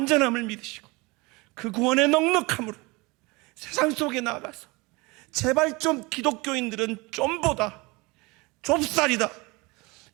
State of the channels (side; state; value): left; quieter; 24.9 dB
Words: 믿으시고 그 구원의 넉넉함으로 세상 속에 나가서 제발 좀 기독교인들은 좀보다 좁쌀이다